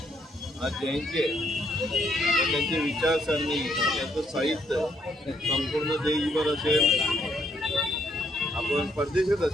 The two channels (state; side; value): normal; both; correlation 0.72